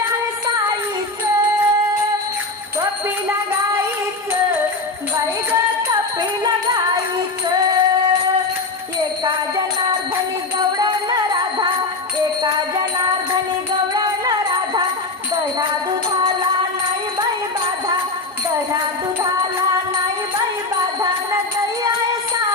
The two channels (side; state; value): right; quieter; 3.4 dB